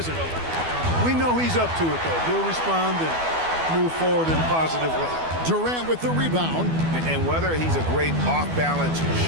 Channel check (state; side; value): late; left; 12 ms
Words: We know he's up to it, though. He'll respond and move forward in a positive way. Durant with the rebound. And whether he's a great off-balance